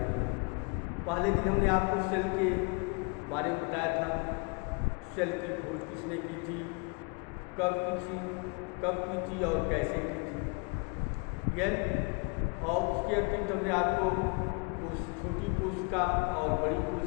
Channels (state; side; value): quieter; right; 32.2 dB